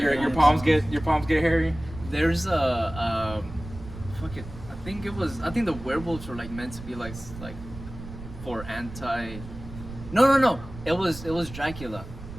your hairy palms hands. get hairy. There's a fuck it. I think the werewolves were like meant to be like for anti. No. It was Dracula.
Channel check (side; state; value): right; noise; rumble, 13 dB below the sound